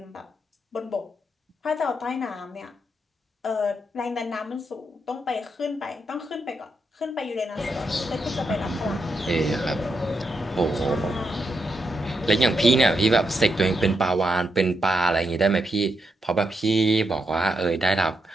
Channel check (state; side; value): normal; both; correlation 0.82